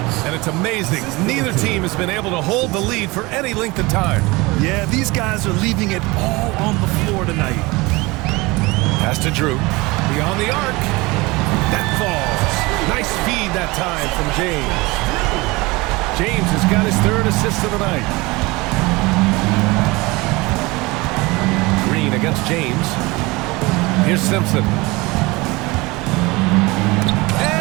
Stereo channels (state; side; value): quieter; left; 23.2 dB